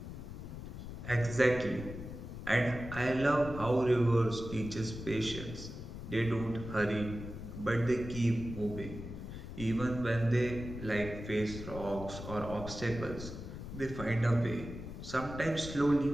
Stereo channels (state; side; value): noise; left; rumble, 9 dB below the sound